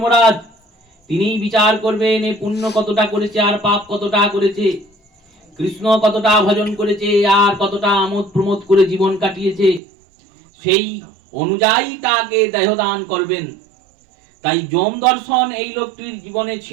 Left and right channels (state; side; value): drops out; left; at 9.8 s